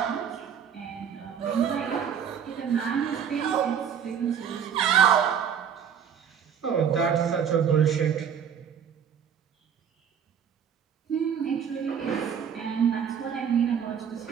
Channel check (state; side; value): quieter; left; 7.9 dB